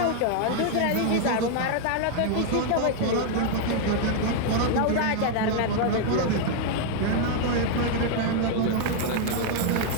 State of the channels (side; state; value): both; different; correlation 0.00